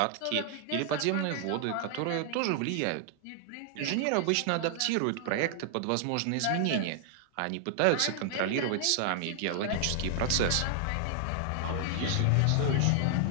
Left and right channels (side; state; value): both; different; correlation 0.00